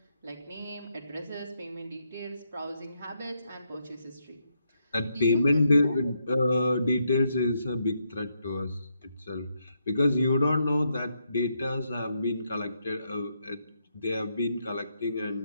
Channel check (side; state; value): both; inverted; correlation -0.80